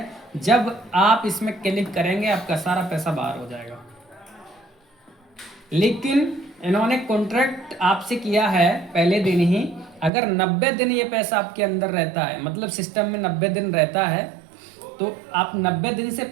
जब आप इसमें क्लिक करेंगे आपका सारा पैसा बाहर हो जाएगा। लेकिन इन्होंने कॉन्ट्रैक्ट आपसे किया है पहले दिन ही, अगर 90 दिन ये पैसा आपके अंदर रहता है, मतलब सिस्टम में 90 दिन रहता है, तो आप 90 दिन से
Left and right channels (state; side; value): drops out; left; at 10.1 s